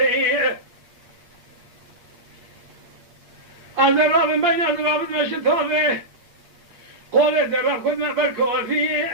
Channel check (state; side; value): late; left; 8.6 ms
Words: هذا الراب بين الراب ماشي ثابه قول الراب خذ ما بركو في